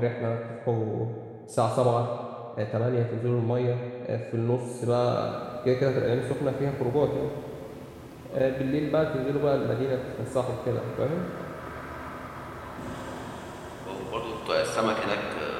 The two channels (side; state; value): both; identical; correlation 1.00